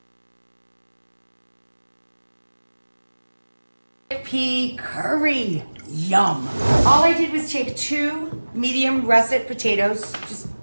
Pea curry. Yum. All I did was take 2 medium russet potatoes, just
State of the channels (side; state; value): both; inverted; correlation -1.00